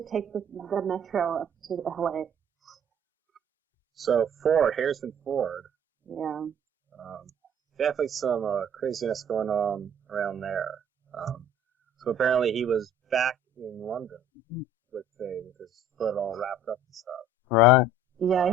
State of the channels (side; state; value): both; normal; correlation 0.52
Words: take the metro up to LA. So Harrison Ford. Yeah. Definitely some craziness going on around there. So apparently he was back in London with his foot all wrapped up and stuff. Right. Yeah, I